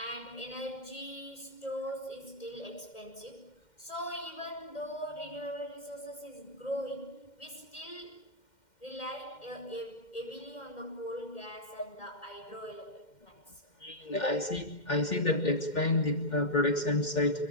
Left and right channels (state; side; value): late; right; 2.1 ms